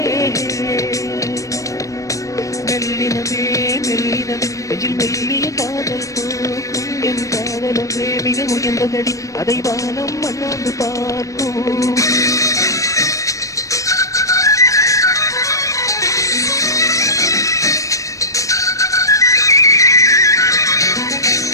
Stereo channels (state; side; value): late; right; 0.16 ms